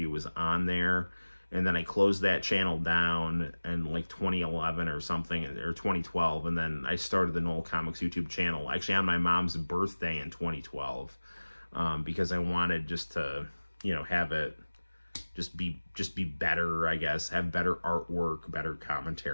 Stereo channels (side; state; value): both; inverted; correlation -1.00